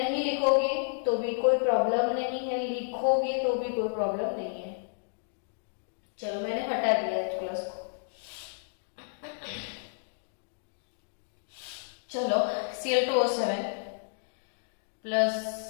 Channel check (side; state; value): right; silent; digital silence